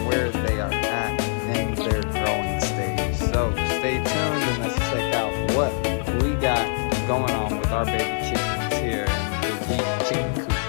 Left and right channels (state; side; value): silent; right; digital silence